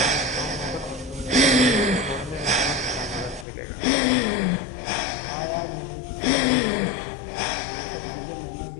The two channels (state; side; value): drops out; right; at 3.5 s